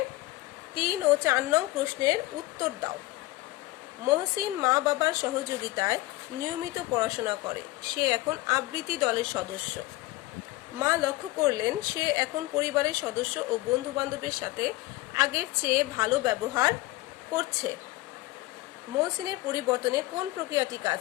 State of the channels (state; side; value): quieter; right; 19.0 dB